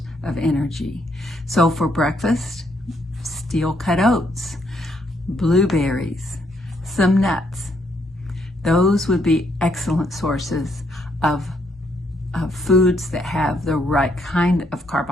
of energy. So for breakfast, steel cut oats. blueberries, some nuts. Those would be excellent sources of foods that have the right kind of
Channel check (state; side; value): normal; both; correlation 0.73